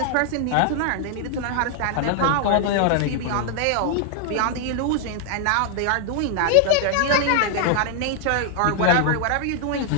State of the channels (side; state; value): both; different; correlation 0.00